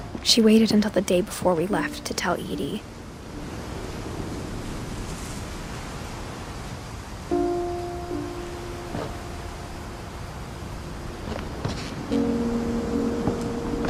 She waited until the day before we left to tell Edie.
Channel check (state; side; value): identical; both; correlation 1.00